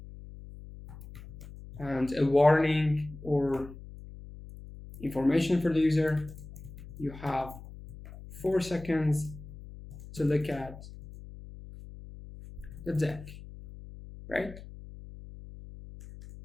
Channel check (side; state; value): left; noise; hum, 15 dB below the sound